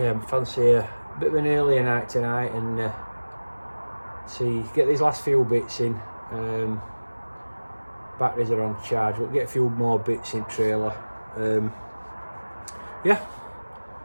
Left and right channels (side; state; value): both; inverted; correlation -1.00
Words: I fancy a bit of an earlier night tonight and get these last few bits in. Batteries are on charge, we'll get a few more bits in trailer. Yeah,